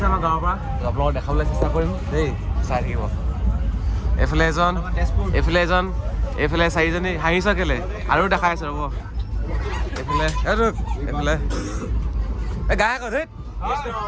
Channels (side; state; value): both; identical; correlation 1.00